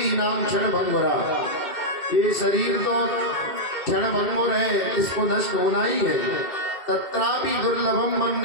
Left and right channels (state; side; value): late; right; 2.2 ms